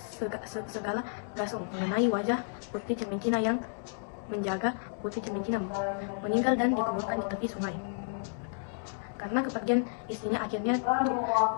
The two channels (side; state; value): right; silent; digital silence